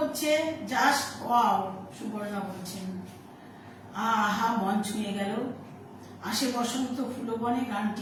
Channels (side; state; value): both; identical; correlation 1.00